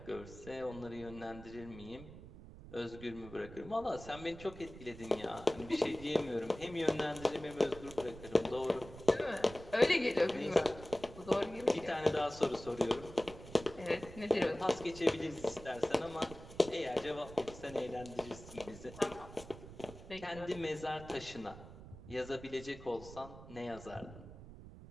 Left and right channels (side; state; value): right; noise; rumble, 15 dB below the sound